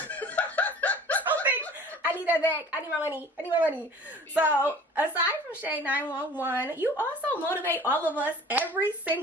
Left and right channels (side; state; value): both; normal; correlation 0.46